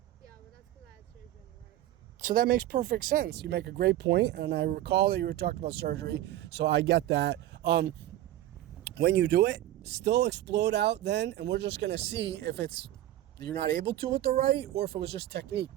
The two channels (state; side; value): quieter; left; 13.8 dB